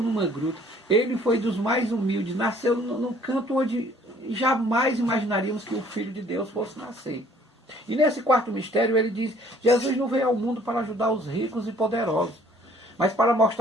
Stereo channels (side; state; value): both; normal; correlation 0.58